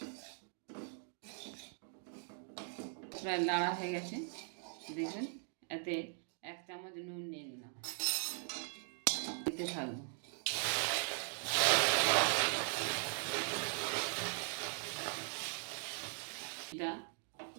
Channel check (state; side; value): silent; left; 51 dB below the other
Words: প্রায় নাড়া হয়ে গেছে। দেখবেন এতে 1 চামচ নুন নিয়ে নিলাম, দিতে থাকবো। এটা